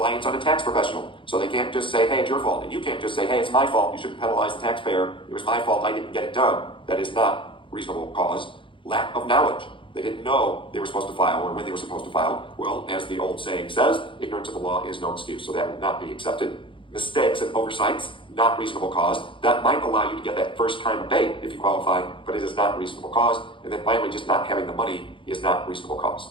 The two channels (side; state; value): right; late; 0.25 ms